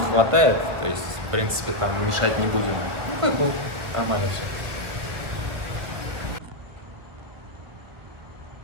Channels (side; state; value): left; late; 1.3 ms